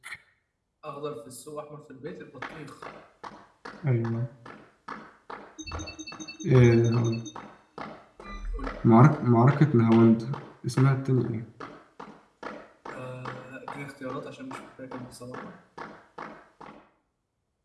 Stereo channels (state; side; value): identical; both; correlation 1.00